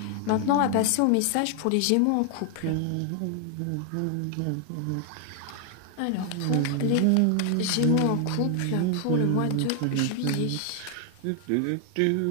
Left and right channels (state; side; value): different; both; correlation 0.00